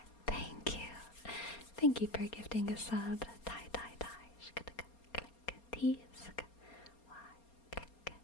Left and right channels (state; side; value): late; right; 4.3 ms